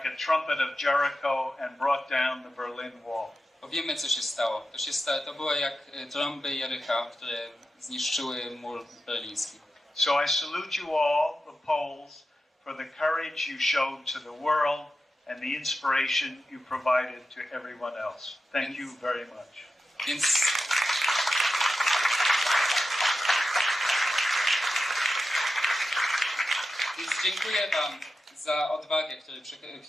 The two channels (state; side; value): normal; both; correlation 0.91